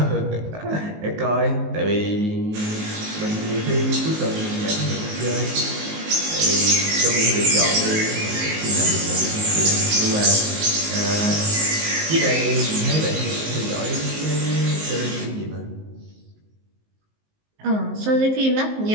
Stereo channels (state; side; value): late; left; 19 ms